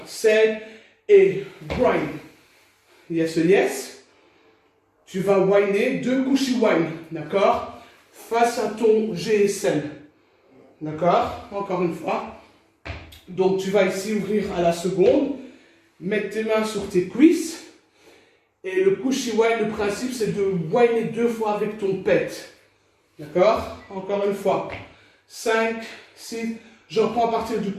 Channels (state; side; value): identical; both; correlation 1.00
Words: 7 et grind. Yes, yes. Tu vas whiner 2 cushy wine. D'accord? Face à ton GSM. D'accord? Encore une fois. Donc, tu vas ici ouvrir à la seconde. Mettre tes mains sur tes cuisses. Et le cushy wine, le principe, c'est de whiner 2 fois avec ton pet. D'accord? Encore une fois. 5, 6. Je reprends à partir du